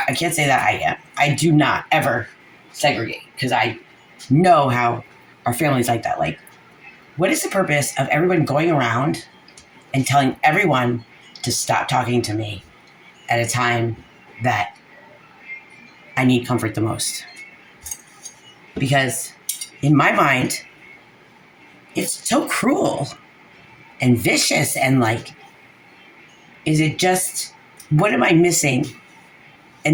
can't say that I am. I do not ever segregate because I know how our family's like that. Like, what is the purpose of everyone going around and telling everyone to stop talking to me at a time that I need comfort the most? Because in my mind, it's so cruel and vicious and like, is it just, what am I missing?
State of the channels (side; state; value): both; identical; correlation 1.00